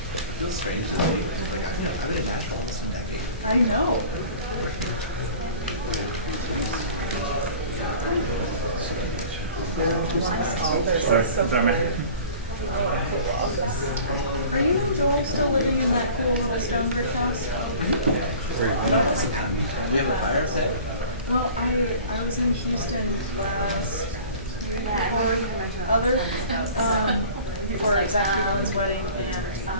feels strange to be like I've been in Nashville almost a decade. I know. Sorry, man. Are you and Joel still living in that cool little stone brick house? We have a fire outside. Well, I was in Houston last year for Executive One's wedding, and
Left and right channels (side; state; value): both; inverted; correlation -0.44